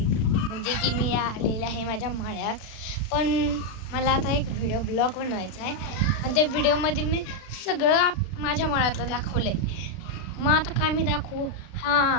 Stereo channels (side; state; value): right; late; 36 ms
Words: म्हणजे की मी आलेले आहे माझ्या माळ्यात. पण मला आता एक व्हिडिओ ब्लॉग बनवायचा आहे आणि त्या व्हिडिओमध्ये मी सगळं माझ्या माळ्यातलं दाखवलं आहे. मग आता काय मी दाखवू?